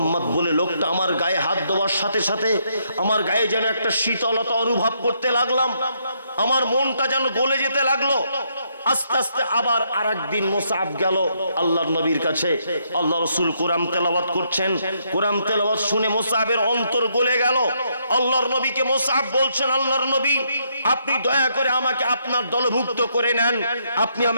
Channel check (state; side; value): inverted; both; correlation -0.74